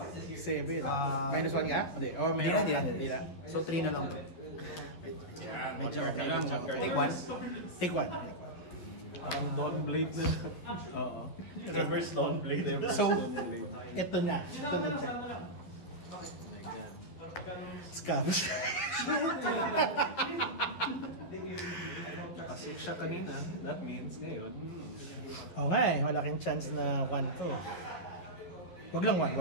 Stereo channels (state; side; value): late; right; 11 ms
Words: 7. Minus 1 nga? Hindi. Oh, meron. Hindi na. So 3 na lang to. Medyo okay lang. Take one. Take one. Parang Dawn Blade na. Oo. Reverse long blade. So, ito na. Ito na check. Oh my God. Scams. Kasi siya kanina, that means ngayon. Oo nga eh, malaking chance na 1 to. Wag lang